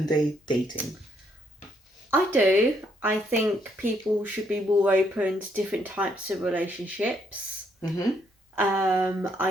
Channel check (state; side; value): normal; both; correlation 0.72